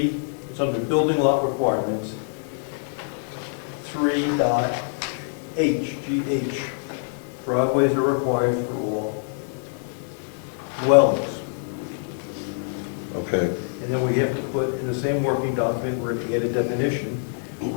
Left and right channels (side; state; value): right; silent; 62 dB below the other